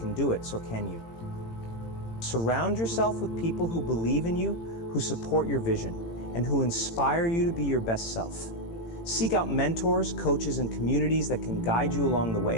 do it, so can you. Surround yourself with people who believe in you, who support your vision, and who inspire you to be your best self. Seek out mentors, coaches, and communities that can guide you along the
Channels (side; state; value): right; late; 18 ms